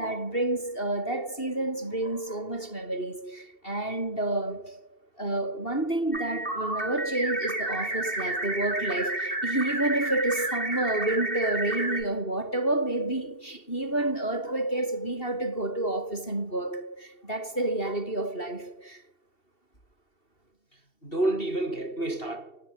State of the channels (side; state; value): right; late; 2.7 ms